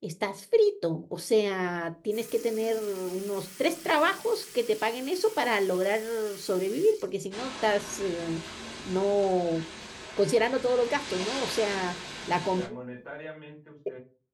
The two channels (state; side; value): identical; both; correlation 1.00